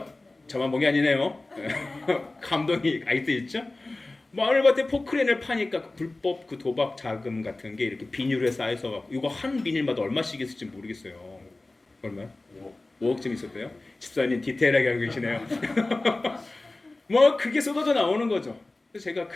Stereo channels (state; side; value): quieter; right; 3.0 dB